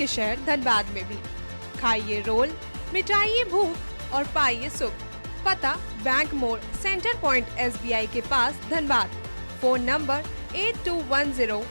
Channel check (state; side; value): inverted; both; correlation -1.00